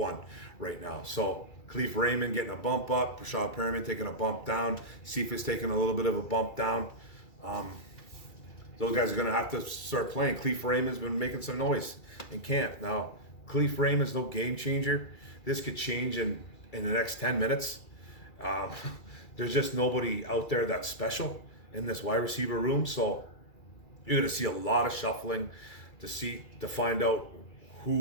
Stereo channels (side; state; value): right; late; 2.3 ms